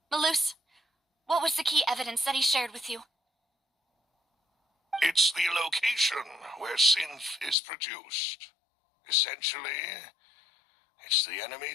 Malus, what was the key evidence that he shared with you? It's the location where Synth is produced. Essentially, it's the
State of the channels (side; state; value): right; drops out; at 7.6 s